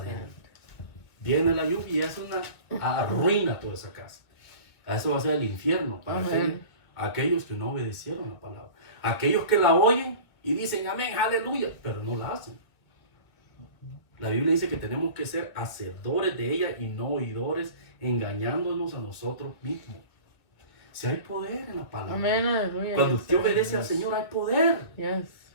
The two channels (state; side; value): late; right; 2.3 ms